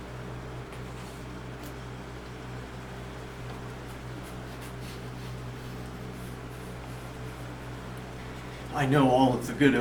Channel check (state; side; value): identical; both; correlation 1.00